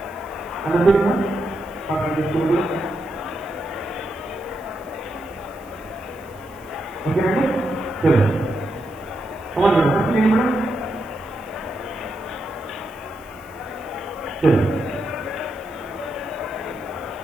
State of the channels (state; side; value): noise; right; hiss, 26 dB below the sound